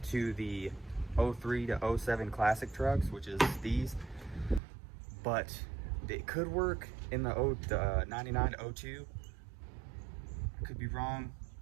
to the 03 to 07 classic trucks, which is these, but it could work in the 99 to 02. I could be wrong,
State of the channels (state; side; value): drops out; left; at 4.6 s